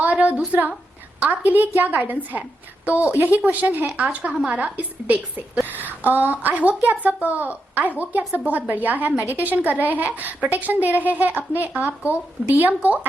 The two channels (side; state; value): both; normal; correlation 0.85